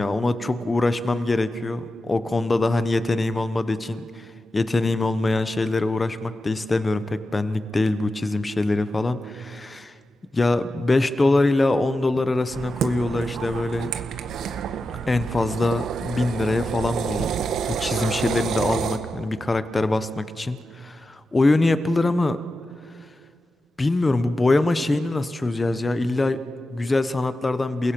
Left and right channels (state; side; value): normal; both; correlation 0.91